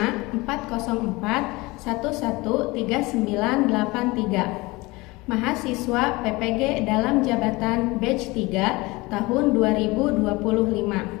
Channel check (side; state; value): right; quieter; 22.7 dB